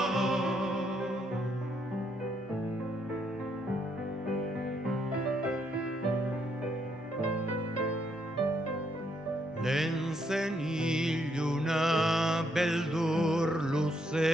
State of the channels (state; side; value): normal; both; correlation 0.74